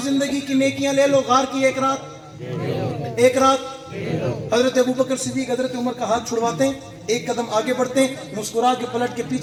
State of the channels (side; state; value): both; identical; correlation 1.00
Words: जिंदगी की नेकियां ले लो गार की एक रात हजरत अबू बकर सिद्दीक हजरत उमर का हाथ छुड़वाते हैं एक कदम आगे बढ़ते हैं मुस्कुरा के पलट के